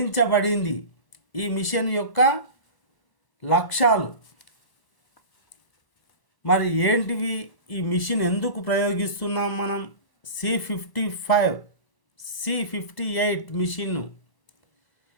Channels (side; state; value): right; late; 1.0 ms